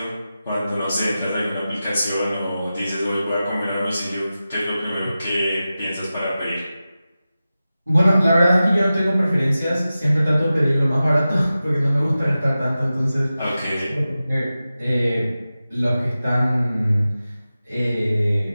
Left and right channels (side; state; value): both; inverted; correlation -0.94